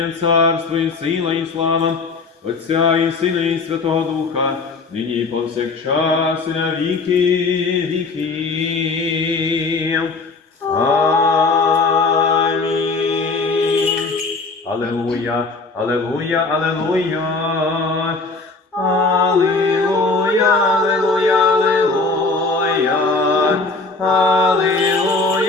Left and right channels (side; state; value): right; quieter; 3.9 dB